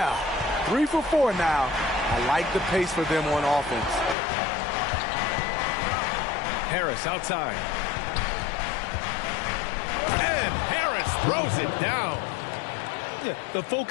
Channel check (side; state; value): right; drops out; at 4.2 s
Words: 3 for 4 now. I like the pace for them on offense. Harris outside. And Harris throws it down. Yeah, the